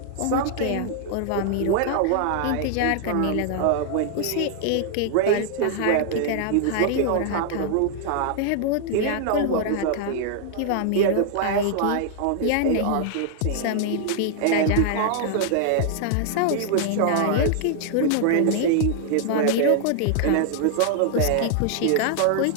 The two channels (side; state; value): both; different; correlation -0.01